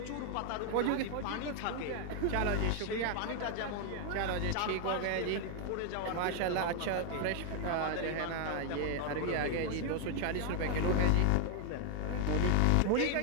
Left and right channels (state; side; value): different; both; correlation 0.00